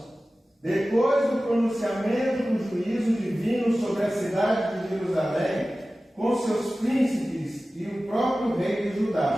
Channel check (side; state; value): both; normal; correlation 0.96